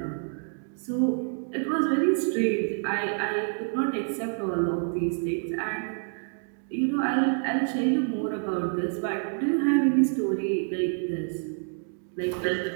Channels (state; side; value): silent; left; 55 dB below the other